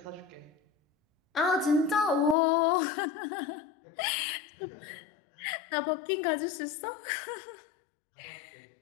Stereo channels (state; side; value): drops out; right; at 2.4 s